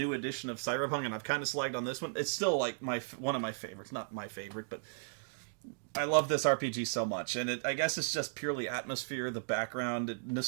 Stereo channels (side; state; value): left; silent; digital silence